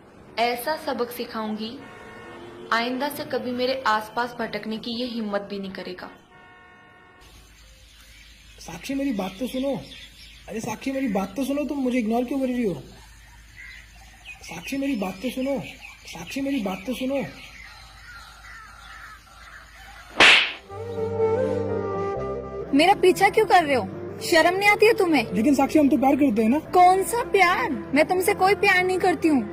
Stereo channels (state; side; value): identical; both; correlation 1.00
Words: ऐसा सबक सिखाऊंगी आइंदा से कभी मेरे आसपास भटकने की ये हिम्मत भी नहीं करेगा। साक्षी, मेरी बात तो सुनो। अरे साक्षी, मेरी बात तो सुनो। तुम मुझे इग्नोर क्यों कर रही हो? साक्षी, मेरी बात तो सुनो। साक्षी, मेरी बात तो सुनो। मेरा पीछा क्यों कर रहे हो? शर्म नहीं आती है तुम्हें? लेकिन साक्षी, हम तो प्यार करते हैं ना। कौन सा प्यार? मैं तुमसे कोई प्यार नहीं करती